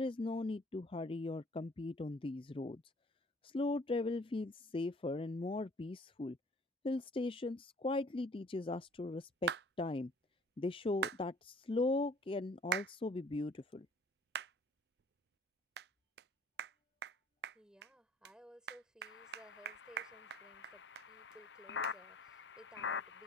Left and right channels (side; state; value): both; normal; correlation 0.54